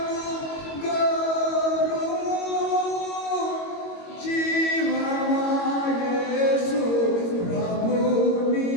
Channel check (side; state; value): right; late; 22 ms